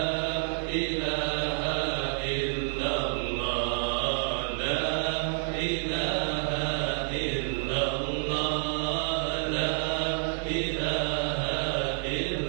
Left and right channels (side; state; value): left; silent; 59 dB below the other